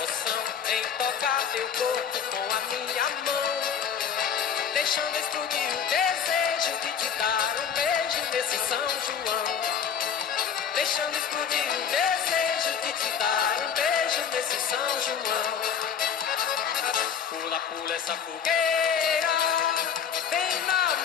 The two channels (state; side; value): quieter; right; 7.6 dB